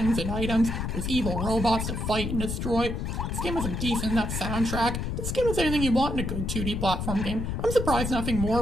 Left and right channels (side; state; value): left; noise; rumble, 3 dB below the sound